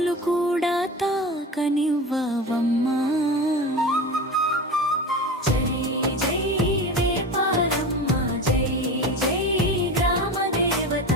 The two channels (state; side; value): normal; both; correlation 0.29